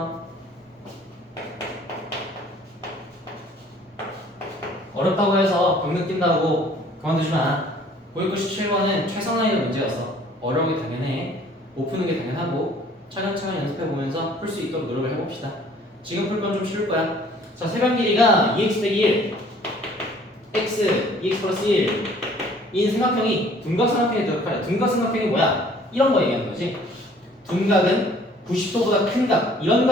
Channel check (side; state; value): both; normal; correlation 0.55